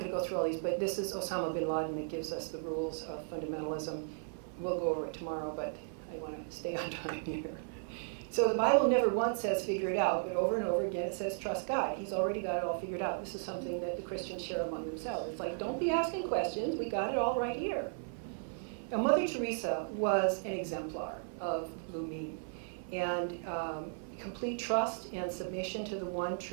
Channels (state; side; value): silent; left; 54 dB below the other